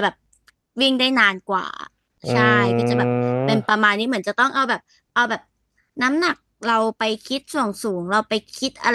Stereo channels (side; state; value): both; identical; correlation 1.00